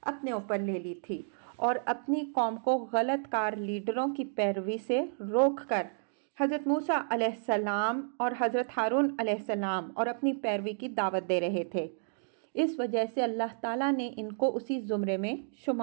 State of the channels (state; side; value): silent; left; digital silence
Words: اپنے اوپر لے لی تھی اور اپنی قوم کو غلط کار لیڈروں کی پیروی سے روک کر حضرت موسیٰ علیہ السلام اور حضرت ہارون علیہ السلام اور اپنی پیروی کی دعوت دے رہے تھے۔ اس وجہ سے اللہ تعالیٰ نے ان کو اسی زمرے میں